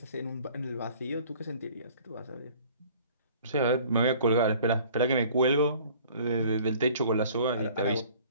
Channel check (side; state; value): both; inverted; correlation -0.51